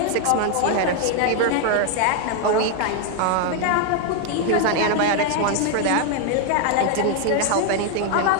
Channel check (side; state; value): both; different; correlation 0.01